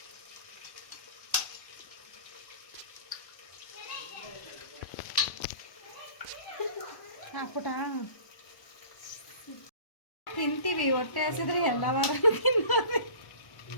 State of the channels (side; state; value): right; late; 1.0 ms